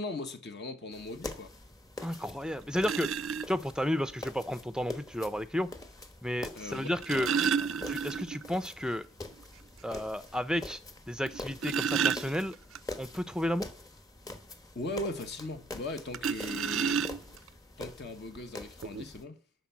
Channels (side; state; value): both; normal; correlation 0.71